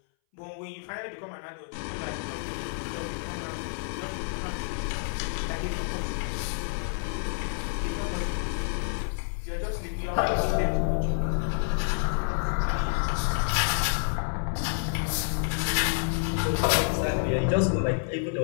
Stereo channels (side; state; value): right; silent; 59 dB below the other